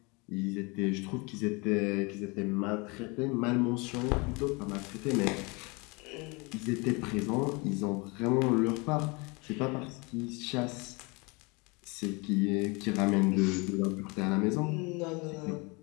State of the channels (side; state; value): right; quieter; 28.0 dB